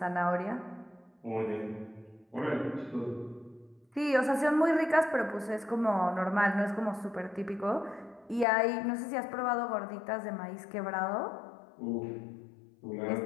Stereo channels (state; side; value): drops out; right; at 8.5 s